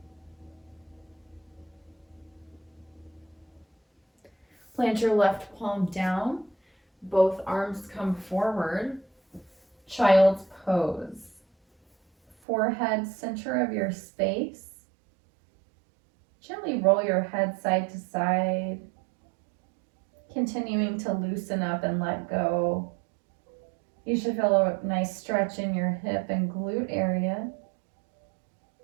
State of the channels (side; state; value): left; drops out; at 12.4 s